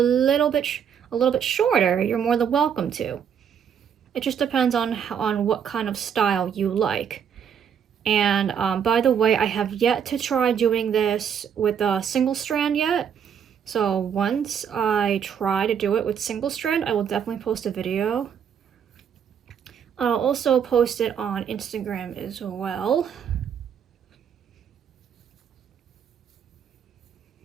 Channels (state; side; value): quieter; left; 8.0 dB